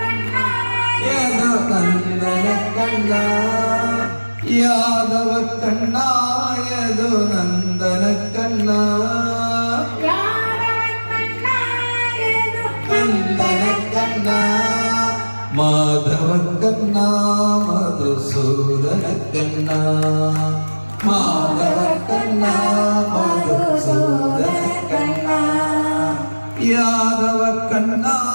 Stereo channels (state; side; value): inverted; both; correlation -1.00